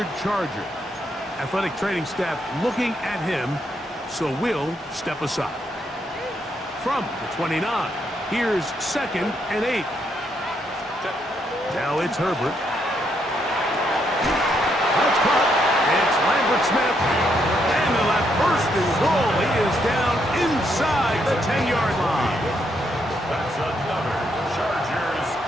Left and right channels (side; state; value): both; normal; correlation 0.76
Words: Charger. Athletic training staff looking at him, so we'll step aside. From the 29, here's 2nd and 8. Now it's Herbert. That's caught. It's Lambert Smith. And they'll have first and goal. He is down inside the 10-yard line. That's another Chargers